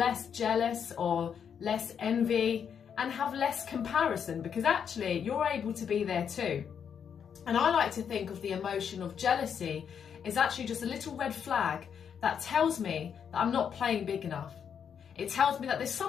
jealous or less envy and have less comparison, because actually you're able to be there too. And I like to think of the emotion of jealousy as actually just a little red flag that tells me that I'm not playing big enough. It tells me that there's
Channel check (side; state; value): right; quieter; 7.6 dB